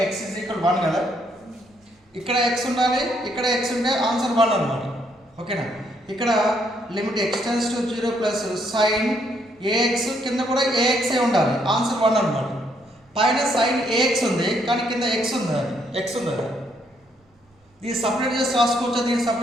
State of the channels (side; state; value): both; normal; correlation 0.72